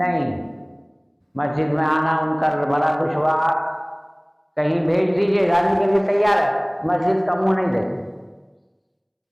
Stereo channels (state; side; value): identical; both; correlation 1.00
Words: مسجد میں آنا ان کا بڑا دشوار، کہیں بھیج دیجیے جانے کے لیے تیار ہے، مسجد کا منہ نہیں دیتے۔